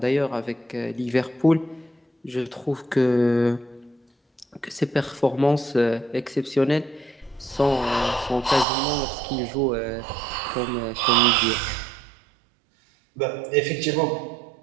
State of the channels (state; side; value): drops out; left; at 8.7 s